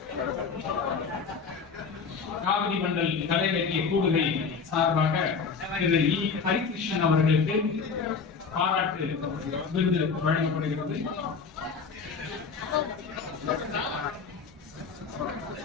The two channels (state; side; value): quieter; right; 5.4 dB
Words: காவிரி மண்டல் கலை இலக்கிய கூடுகை சார்பாக திரு இ. ஹரிகிருஷ்ணன் அவர்களுக்கு பாராட்டு விருது வழங்கப்படுகிறது.